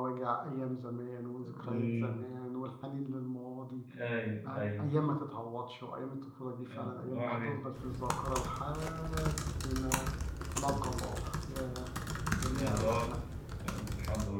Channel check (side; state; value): both; identical; correlation 1.00